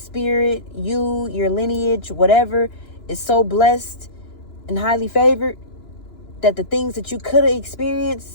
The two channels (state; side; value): late; right; 2.9 ms